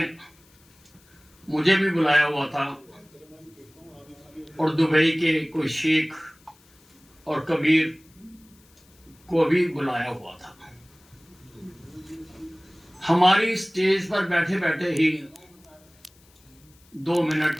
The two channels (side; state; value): left; noise; hiss, 30 dB below the sound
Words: मुझे भी बुलाया हुआ था और दुबई के कोई शेख और कबीर को भी बुलाया हुआ था। हमारी स्टेज पर बैठे बैठे ही 2 मिनट